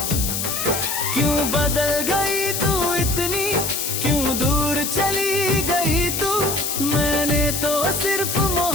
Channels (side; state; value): left; noise; hiss, 2 dB below the sound